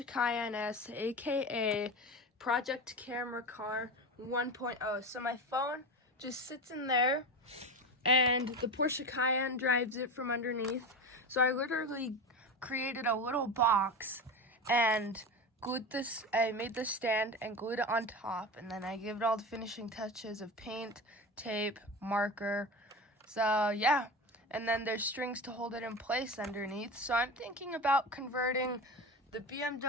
Cayenne S, aka Project Camera Car 1.0. So my phone just sits in there, and the Porsche Cayenne drives it from underneath. So I literally created a little box and I made this stand and glued it on top, and then I gave it all the finishing touches of paint, tape, marker. So yeah, and then there's strings to hold it in place underneath. So I'm thinking about converting the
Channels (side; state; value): both; normal; correlation 0.25